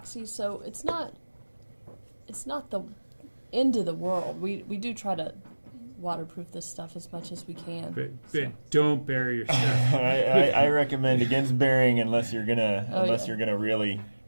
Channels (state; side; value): inverted; both; correlation -1.00